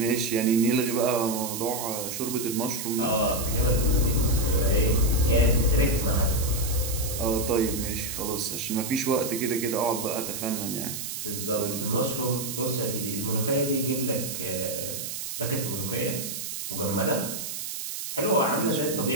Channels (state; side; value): noise; right; hiss, 6 dB below the sound